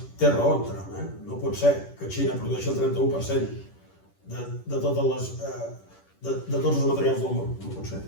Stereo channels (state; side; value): late; right; 10 ms